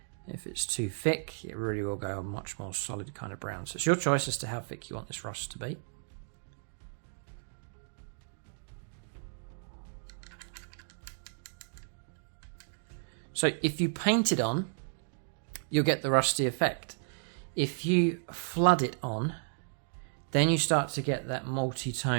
If it's too thick, it really will go a much more solid kind of brown. So it's your choice as to how thick you want this rust to be. So if you paint it on, you'll get the rusty effect. If you flood it on, then you start to get that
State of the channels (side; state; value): left; silent; digital silence